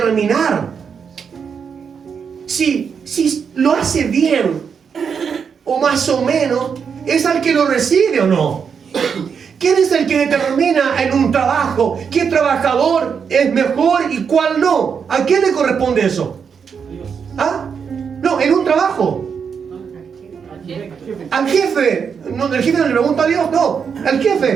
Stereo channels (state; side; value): quieter; left; 6.6 dB